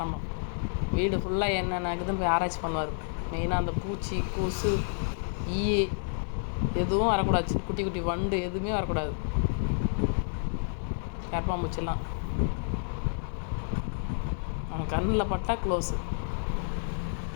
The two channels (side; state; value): right; silent; 58 dB below the other